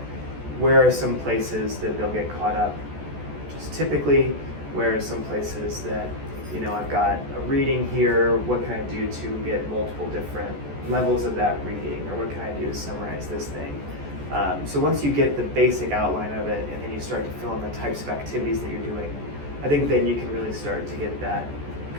where are some places that they'll get caught up just typically? Where are some places that, I've got a reading here, what can I do to get multiple different levels of that reading, or what can I do to summarize this thing? So once you get the basic outline of it, and then you start to fill in the types of activities that you're doing, I think then you can really start to get that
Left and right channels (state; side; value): late; left; 14 ms